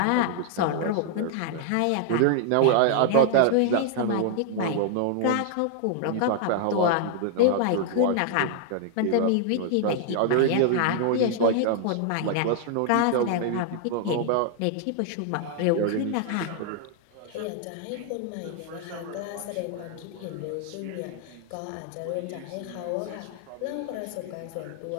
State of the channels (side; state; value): both; different; correlation -0.01